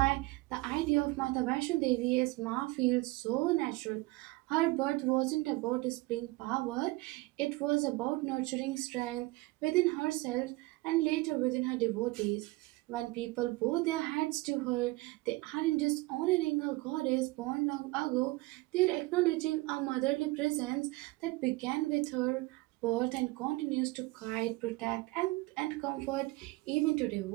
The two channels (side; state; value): left; quieter; 21.7 dB